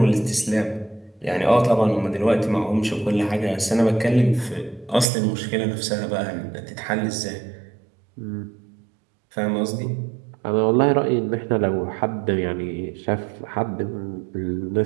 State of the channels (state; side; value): drops out; left; at 5.1 s